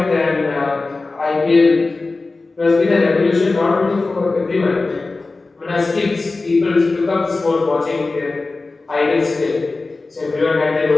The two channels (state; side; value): quieter; right; 3.6 dB